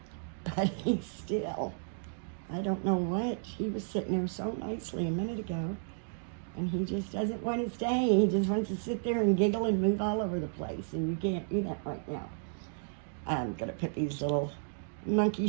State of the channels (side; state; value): left; silent; digital silence